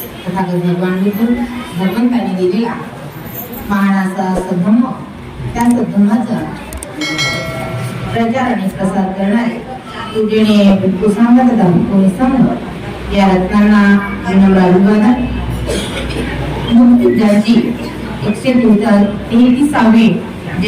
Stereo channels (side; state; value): both; identical; correlation 1.00